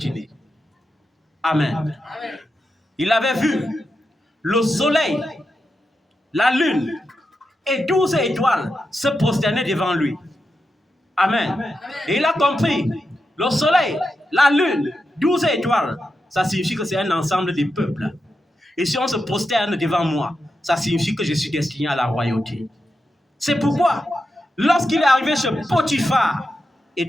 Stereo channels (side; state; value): both; normal; correlation 0.88